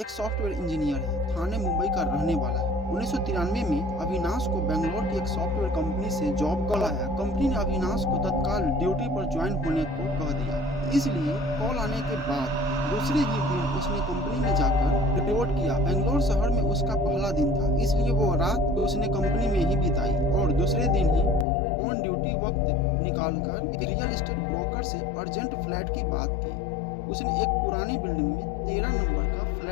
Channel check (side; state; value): right; drops out; at 21.5 s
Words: सॉफ्टवेयर इंजीनियर है, थाने मुंबई का रहने वाला है। 1993 में अविनाश को बेंगलोर की एक सॉफ्टवेयर कंपनी से जॉब कॉल आया। कंपनी ने अविनाश को तत्काल ड्यूटी पर ज्वाइन होने को कह दिया। इसलिए कॉल आने के बाद दूसरे ही दिन उसने कंपनी में जाकर रिपोर्ट किया। बेंगलोर शहर में उसका पहला दिन था, इसलिए वो रात उसने कंपनी में ही बिताई और दूसरे दिन ही ऑन ड्यूटी वक्त निकालकर रियल एस्टेट ब्रोकर से अर्जेंट फ्लैट की बात की। उसने एक पुरानी बिल्डिंग में 13 नंबर का